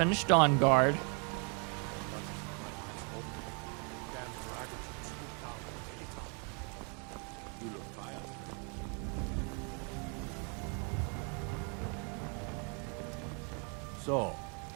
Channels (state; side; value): quieter; left; 36.8 dB